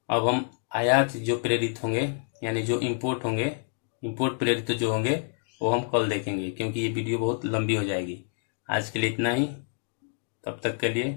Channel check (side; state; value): right; silent; 60 dB below the other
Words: अब हम आयात जो प्रेरित होंगे, यानी जो इंपोर्ट होंगे, इंपोर्ट प्रेरित जो होंगे वो हम कल देखेंगे, क्योंकि ये वीडियो बहुत लंबी हो जाएगी। आज के लिए इतना ही, तब तक के लिए